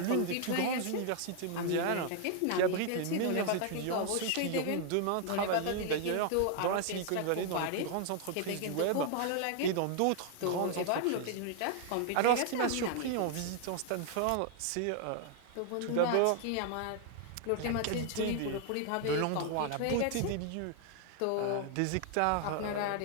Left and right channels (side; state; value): both; different; correlation 0.00